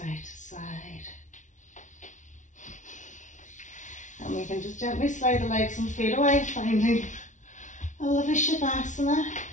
to side. And we can just gently slide the legs and feet away, finding a lovely Shavasana.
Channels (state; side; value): late; right; 0.36 ms